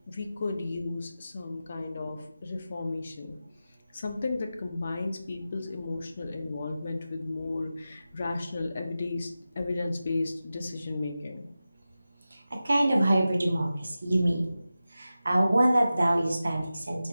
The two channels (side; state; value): both; inverted; correlation -0.94